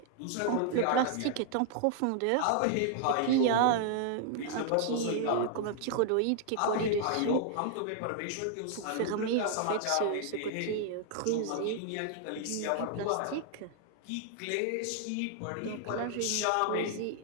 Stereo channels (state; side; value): different; both; correlation 0.00